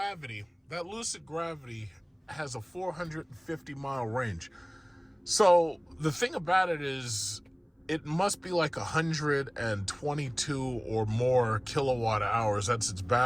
has a 450-mile range. So the thing about it is, it must be like 122 or more kilowatt hours. That's its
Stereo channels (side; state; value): both; identical; correlation 1.00